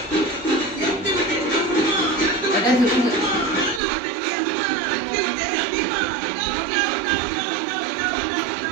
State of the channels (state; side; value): drops out; left; at 3.8 s